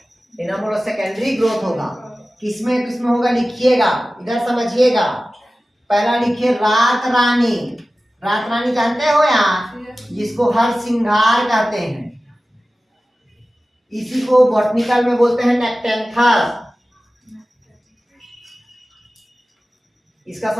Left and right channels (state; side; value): normal; both; correlation 0.96